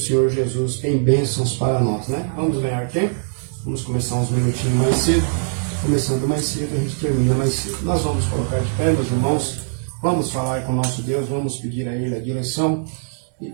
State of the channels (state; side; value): silent; left; digital silence